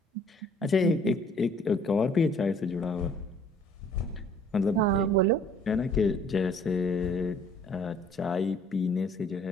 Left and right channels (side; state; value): both; normal; correlation 0.57